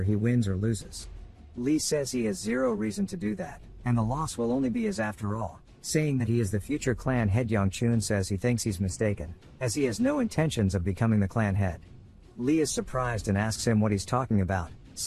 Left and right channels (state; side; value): identical; both; correlation 1.00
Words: he wins or loses. Lee says he has zero reason to do that, and the loss will only be his after all, saying that he is the future clan head. Young Chun says he thinks he's mistaken, as he has no intentions of becoming the clan head. Lee is surprised and asks him what he's talking about,